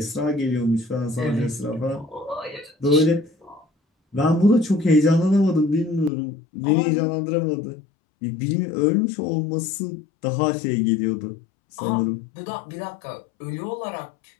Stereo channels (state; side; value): drops out; right; at 6.1 s